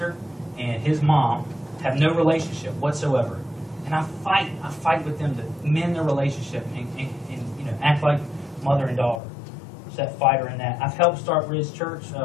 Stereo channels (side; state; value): right; drops out; at 9.2 s